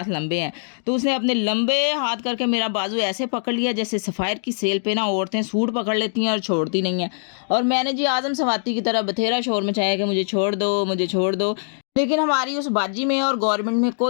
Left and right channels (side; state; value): right; silent; digital silence